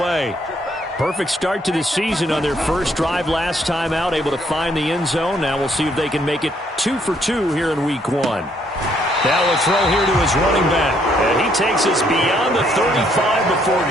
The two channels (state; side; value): normal; both; correlation 0.69